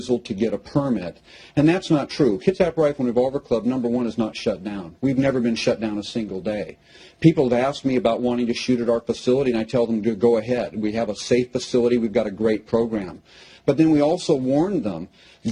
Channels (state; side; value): identical; both; correlation 1.00